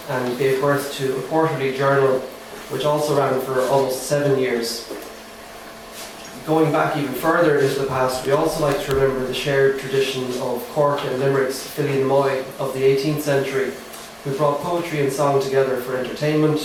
and gave birth to a quarterly journal, which also ran for almost 7 years. Going back even further into the past, we also like to remember the shared tradition of Cork and Limerick's Fillion Moy of the 18th century, who brought poetry and song together for entertainment,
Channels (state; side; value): identical; both; correlation 1.00